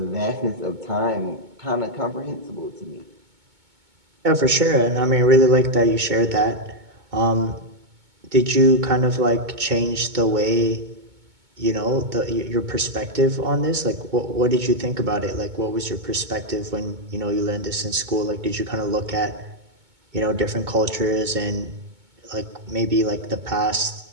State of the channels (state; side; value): late; left; 2.2 ms